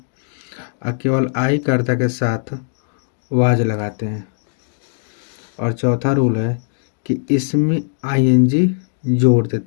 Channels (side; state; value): right; silent; digital silence